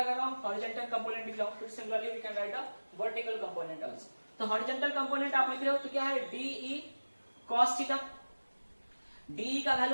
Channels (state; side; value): inverted; both; correlation -1.00